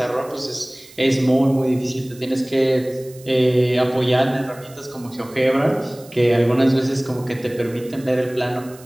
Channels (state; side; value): noise; right; hiss, 22 dB below the sound